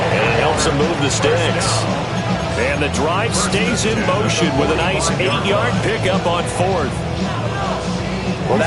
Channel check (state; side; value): identical; both; correlation 1.00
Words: And it helps him move the sticks. And the drive stays in motion with a nice 8-yard pickup on 4th. Well,